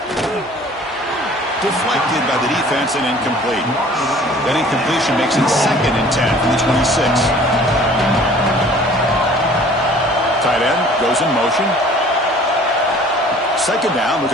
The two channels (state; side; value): normal; both; correlation 0.50